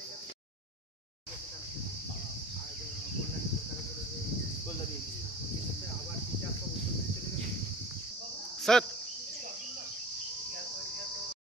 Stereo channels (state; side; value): normal; both; correlation 0.38